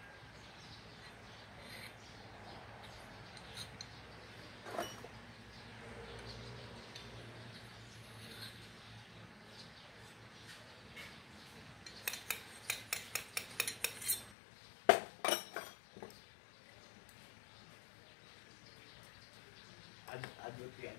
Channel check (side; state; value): right; drops out; at 14.4 s